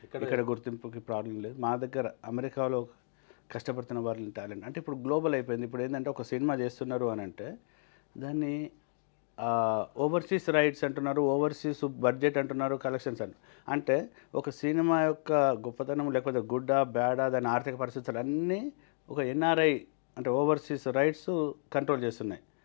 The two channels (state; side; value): silent; right; digital silence